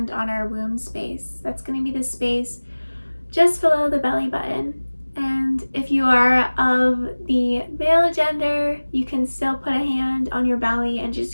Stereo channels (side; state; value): both; inverted; correlation -1.00